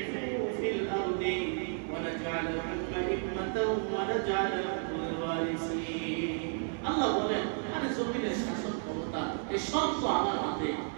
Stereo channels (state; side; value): silent; left; 56 dB below the other